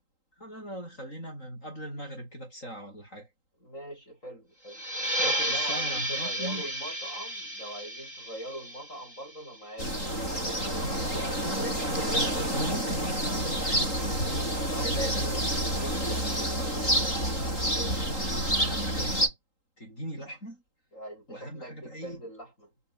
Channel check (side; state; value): right; late; 3.8 ms